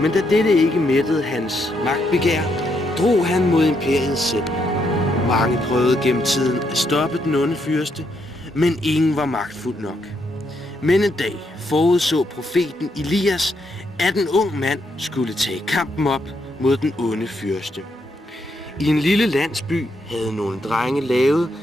Men da dette ikke mættede hans magtbegær, drog han mod imperiet selv. Mange prøvede gennem tiden at stoppe den onde fyrste, men ingen var magtfuld nok. Men en dag forudså profeten Elias, at en ung mand skulle tage kampen op mod den onde fyrste. I en lille landsby havde nogle drenge lavet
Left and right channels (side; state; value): both; normal; correlation 0.77